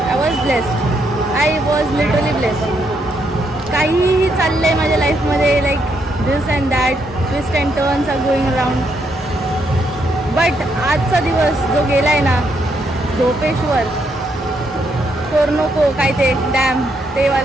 I was literally blessed. काहीही चाललंय माझ्या लाईफमध्ये like this and that, twist and turns are going around. But आजचा दिवस जो गेलाय ना, झोपेश्वर, कोरनोको काय ते डॅम ते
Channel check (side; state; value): both; normal; correlation 0.76